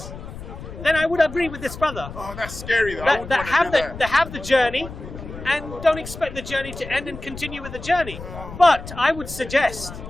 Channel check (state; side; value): noise; left; rumble, 12 dB below the sound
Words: then I would agree with this brother. Oh, that's scary though. That have the journey, and don't expect the journey to end and continue with the journey. But I would suggest